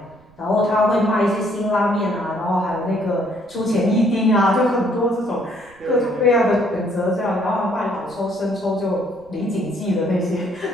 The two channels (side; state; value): right; noise; rumble, 28 dB below the sound